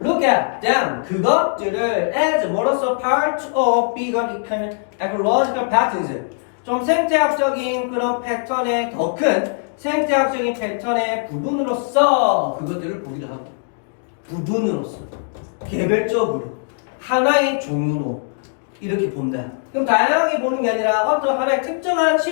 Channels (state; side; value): silent; right; digital silence